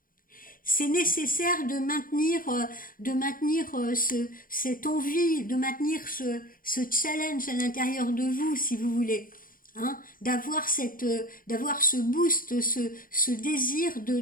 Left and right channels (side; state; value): right; late; 0.41 ms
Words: c'est nécessaire de maintenir cette envie, de maintenir ce challenge à l'intérieur de vous, si vous voulez. Hein, d'avoir ce boost, ce désir